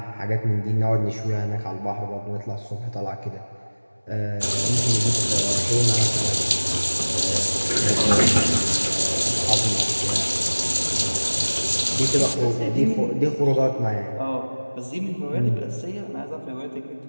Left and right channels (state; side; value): inverted; both; correlation -1.00